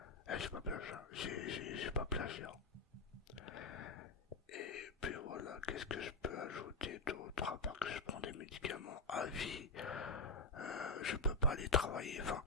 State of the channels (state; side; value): quieter; right; 3.3 dB